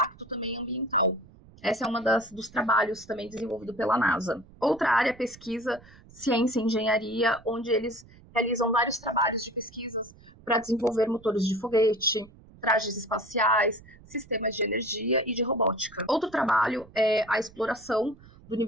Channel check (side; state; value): right; noise; rumble, 23 dB below the sound